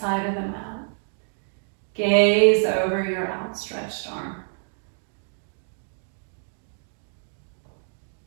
of the mat. Gaze over your outstretched arm.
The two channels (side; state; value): left; silent; 57 dB below the other